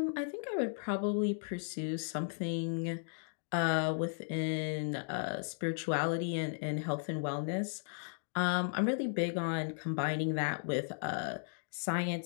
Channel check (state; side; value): silent; right; digital silence